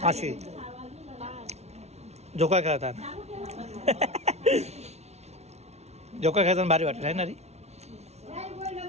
अशी झोका खेळतात. झोका खेळताना भारी वाटत आहे ना रे.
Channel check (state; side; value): late; left; 0.31 ms